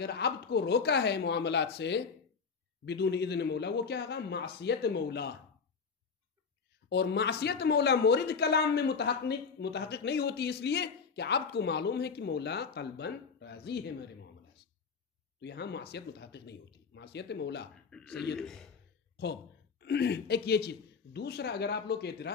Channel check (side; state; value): right; quieter; 5.5 dB